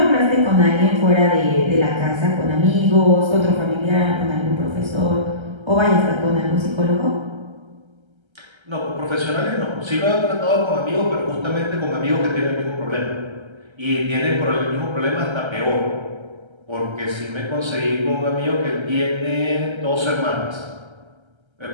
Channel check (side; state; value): left; late; 1.3 ms